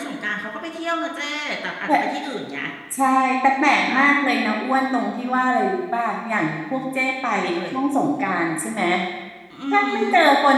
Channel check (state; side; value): identical; both; correlation 1.00